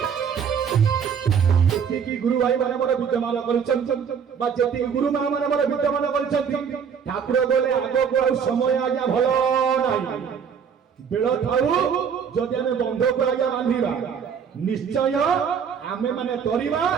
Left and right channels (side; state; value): left; quieter; 7.1 dB